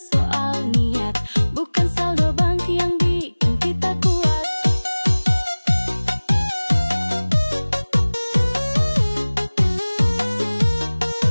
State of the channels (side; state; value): both; inverted; correlation -1.00